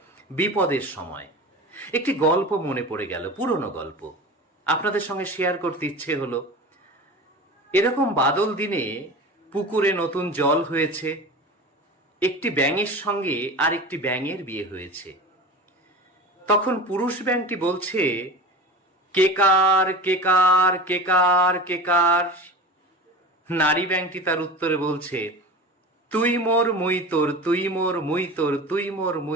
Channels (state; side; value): normal; both; correlation 0.32